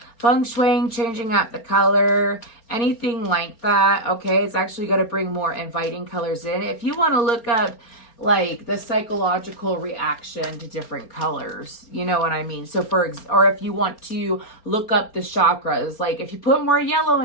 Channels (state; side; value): late; right; 4.3 ms